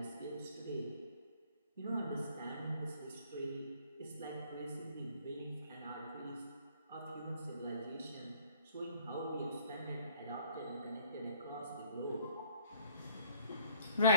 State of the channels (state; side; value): inverted; both; correlation -0.58